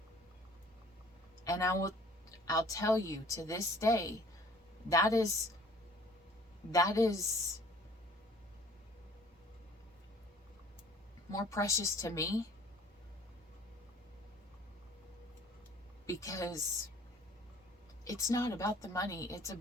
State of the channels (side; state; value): both; normal; correlation 0.53